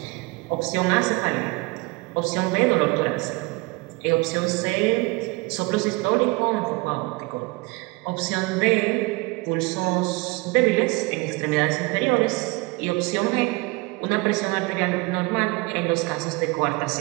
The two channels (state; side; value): quieter; left; 25.2 dB